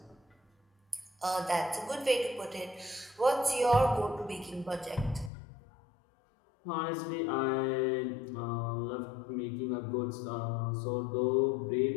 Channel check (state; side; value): drops out; right; at 5.3 s